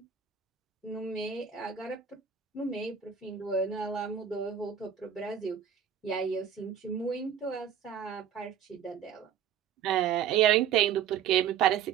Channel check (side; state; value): left; quieter; 8.3 dB